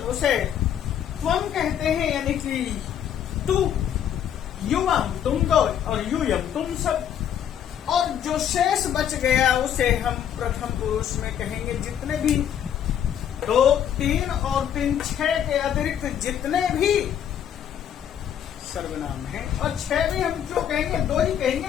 उसे त्वम कहते हैं, यानी कि तू, युवम तुम दो और यूयम तुम सब। और जो शेष बच गया उसे हम प्रथम पुरुष में कहेंगे। जितने भी 2, 3 और 3, 6 के अतिरिक्त जितने भी सर्वनाम हैं, और 6 भी हम क्यों कहेंगे? 2 ही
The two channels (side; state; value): right; quieter; 9.5 dB